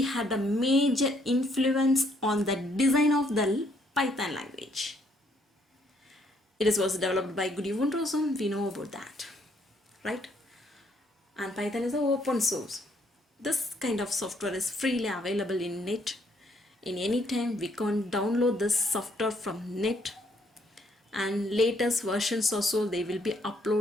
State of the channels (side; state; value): both; normal; correlation 0.69